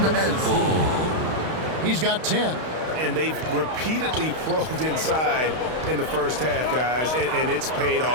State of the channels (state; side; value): late; left; 32 ms